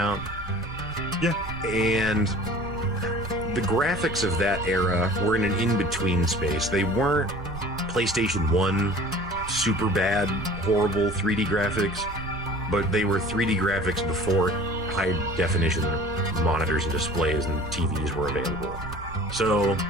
Yeah. And the graphics of that era were in an in-between space. They weren't PlayStation 1 super bad, horrible 3D graphics, but they were 3D graphics before high-definition monitors and displays and TVs were available. So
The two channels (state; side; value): noise; right; rumble, 13 dB below the sound